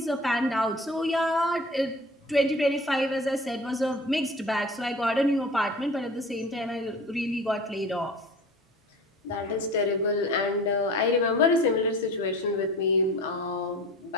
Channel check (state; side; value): normal; both; correlation 0.40